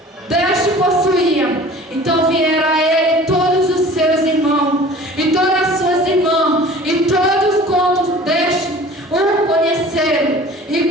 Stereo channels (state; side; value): normal; both; correlation 0.45